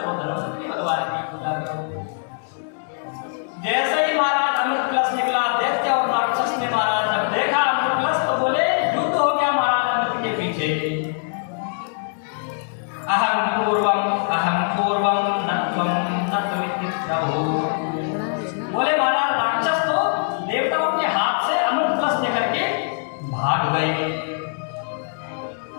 धन्वंतरी भगवान की पूजा करो। जैसे ही महाराज अमृत कलश निकला, दैत्य और राक्षस ने महाराज जब देखा अमृत कलश, तो बोले युद्ध हो गया महाराज अमृत के पीछे। अहम पूर्वम नत्वम नत्वमिति प्रभु। बोले महाराज राक्षस तो देवताओं के हाथ से अमृत कलश लेकर के भाग गए।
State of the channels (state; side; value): silent; right; 64 dB below the other